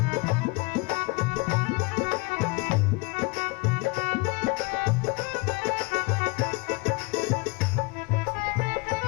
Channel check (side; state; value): right; quieter; 26.4 dB